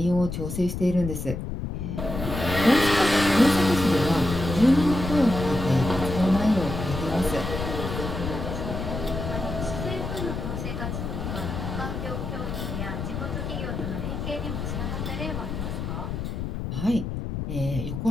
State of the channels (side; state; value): left; noise; rumble, 5 dB below the sound